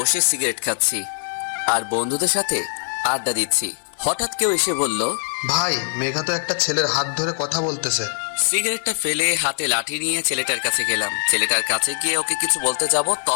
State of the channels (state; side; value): silent; right; 56 dB below the other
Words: সিগারেট খাচ্ছি আর বন্ধুদের সাথে আড্ডা দিচ্ছি। হঠাৎ কেউ এসে বলল, ভাই মেঘা তো একটা ছেলের হাত ধরে কথা বলতেছে। সিগারেটটা ফেলে হাতে লাঠি নিয়ে ছেলেটার কাছে গেলাম। ছেলেটার কাছে গিয়ে ওকে কিছু বলতে যাব,